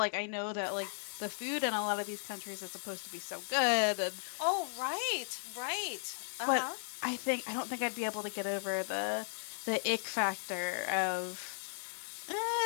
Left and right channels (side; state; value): right; silent; 54 dB below the other